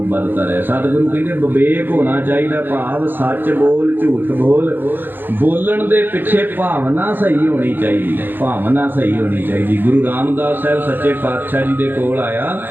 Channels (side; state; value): left; late; 0.095 ms